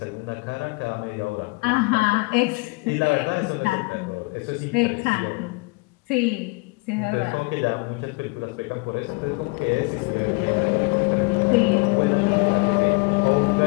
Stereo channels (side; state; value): right; quieter; 27.1 dB